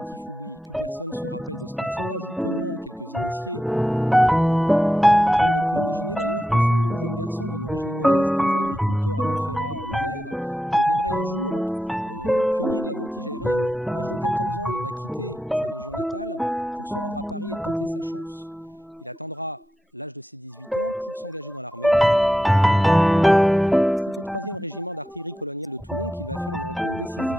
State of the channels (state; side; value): normal; both; correlation 0.89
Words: oubli. Plus personne se rappelle de ce personnage, ou peu de monde, quelques initiés. Qui aurait pu imaginer d'ailleurs que ce jeune garçon d'une origine modeste, fils d'agriculteur à Montferrat en Isère, deviendrait un jour pionnier de la voltige aérienne. À l'âge de 14 ans, il va quitter sa région natale pour se rendre à Paris et tenter sa chance. Il attendra l'âge de ses 18 ans pour s'engager dans l'armée. C'est au 3e régiment d'artillerie coloniale de Toulon qu'il va faire une rencontre